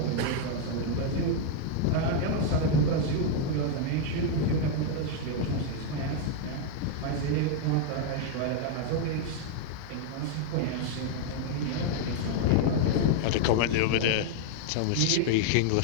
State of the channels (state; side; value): different; both; correlation 0.00